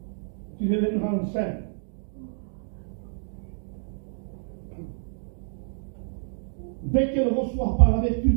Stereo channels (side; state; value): left; silent; digital silence